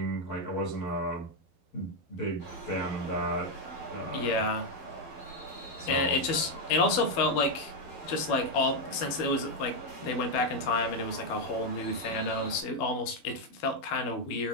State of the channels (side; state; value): right; late; 12 ms